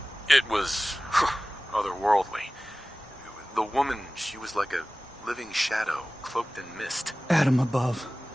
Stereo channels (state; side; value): normal; both; correlation 0.97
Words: It was otherworldly. The woman, she was like a living shadow, cloaked in mist. Adam above.